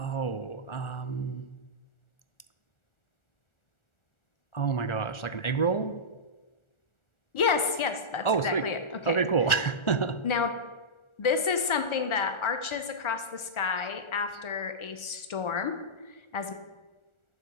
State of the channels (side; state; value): right; late; 1.4 ms